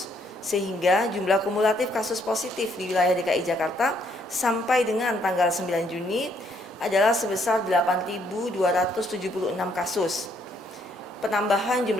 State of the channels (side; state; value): both; normal; correlation 0.69